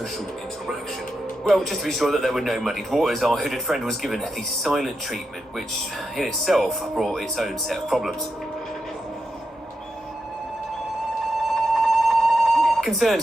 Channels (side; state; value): both; normal; correlation 0.87